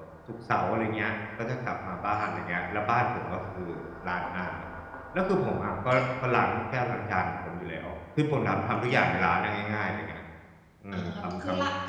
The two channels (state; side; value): identical; both; correlation 1.00